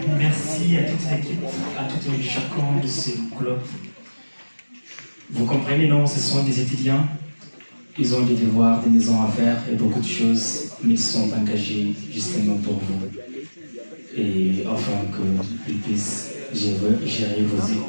merci à toute l'équipe, à tout et chacun de ces clubs. Vous comprenez, non, ce sont des étudiants, ils ont des devoirs, des maisons à faire et beaucoup de choses, mais ils sont engagés justement pour vous. Et afin qu'ils puissent gérer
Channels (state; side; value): inverted; both; correlation -1.00